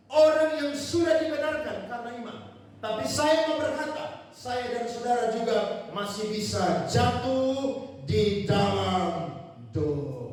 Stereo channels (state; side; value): identical; both; correlation 1.00